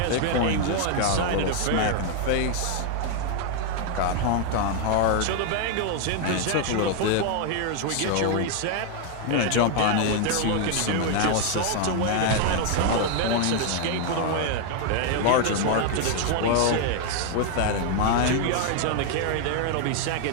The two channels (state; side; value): different; both; correlation 0.00